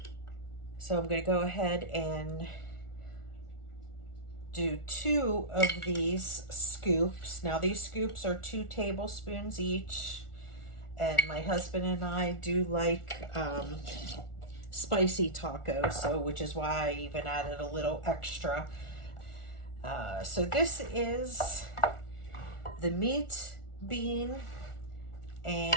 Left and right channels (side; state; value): right; late; 1.4 ms